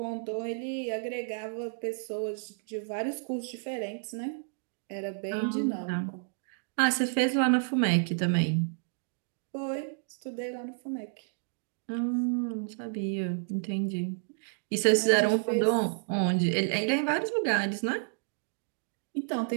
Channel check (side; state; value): left; silent; digital silence